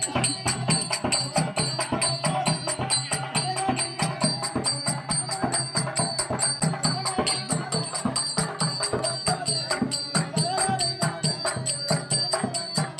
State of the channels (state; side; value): identical; both; correlation 1.00